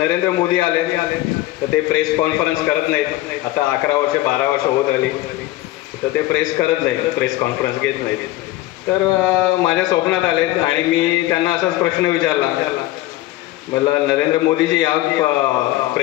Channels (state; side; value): quieter; right; 16.6 dB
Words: मोदी आले, तर ते प्रेस कॉन्फरन्स करत नाहीत. आता 11 वर्ष 12 वर्ष होत आली, तर ते प्रेस करत नाहीत, प्रेस कॉन्फरन्स घेत नाहीत. तर माझ्या स्वप्नात आले आणि मी त्यांना असाच प्रश्न विचारला, मला नरेंद्र मोदी जी आप